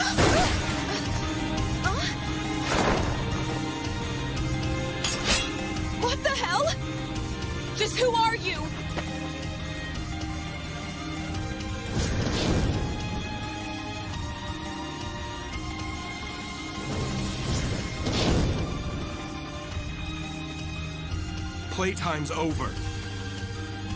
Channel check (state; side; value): identical; both; correlation 1.00